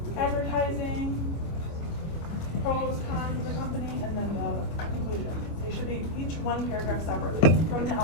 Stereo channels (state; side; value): late; right; 25 ms